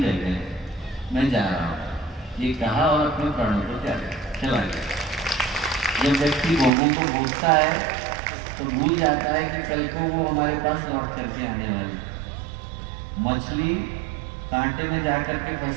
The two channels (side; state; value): left; drops out; at 6.7 s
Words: रह गए, मैं जा रहा हूँ। ये कहा और अपने प्राणों को त्याग चला गया। जब व्यक्ति भोगों को भोगता है तो भूल जाता है कि कल को वो हमारे पास लौट करके आने वाली। मछली कांटे में जाकर के